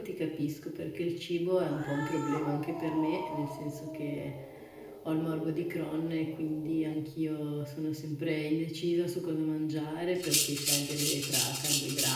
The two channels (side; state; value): both; identical; correlation 1.00